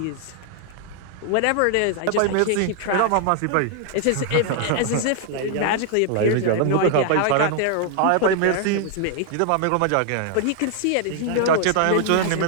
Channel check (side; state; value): both; different; correlation 0.00